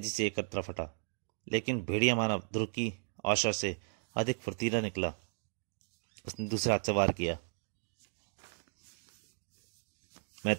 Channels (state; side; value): silent; left; digital silence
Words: से एक तरफ हटा, लेकिन भेड़िया मानव ध्रुव की आशा से अधिक फुर्तीला निकला। उसने दूसरा हाथ से वार किया। मैं